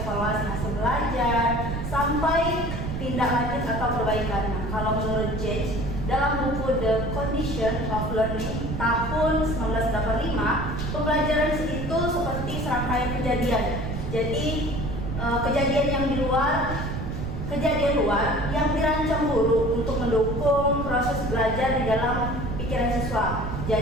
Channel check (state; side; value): noise; right; rumble, 4 dB below the sound